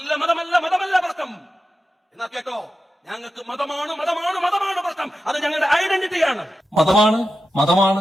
മതമല്ല മതമല്ല പ്രശ്നം എന്നാ കേട്ടോ, ഞങ്ങൾക്ക് മതമാണ് മതമാണ് മതമാണ് പ്രശ്നം. അത് ഞങ്ങളുടെ ഐഡന്റിറ്റിയാണ്. മതമാണ്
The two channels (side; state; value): both; normal; correlation 0.91